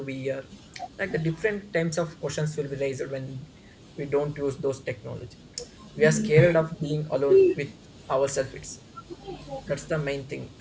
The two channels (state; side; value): identical; both; correlation 1.00